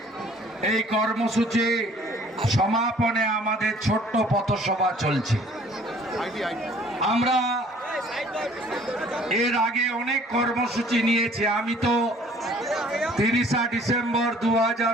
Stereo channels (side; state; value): both; normal; correlation 0.55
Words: এই কর্মসূচি সমাপনে আমাদের ছোট্ট পথসভা চলছে। আমরা এর আগে অনেক কর্মসূচি নিয়েছি। আমি তো 30 ডিসেম্বর